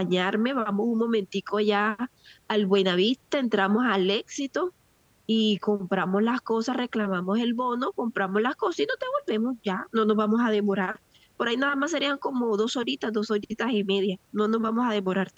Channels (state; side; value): identical; both; correlation 1.00